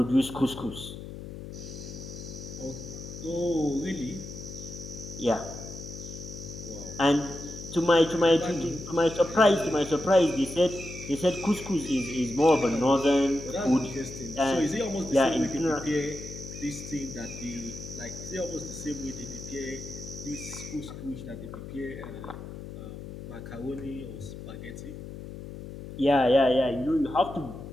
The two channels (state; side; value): noise; left; hum, 11 dB below the sound